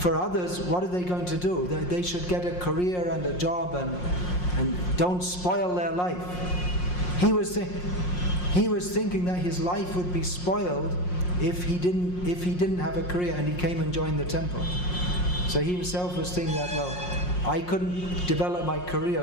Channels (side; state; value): right; late; 5.6 ms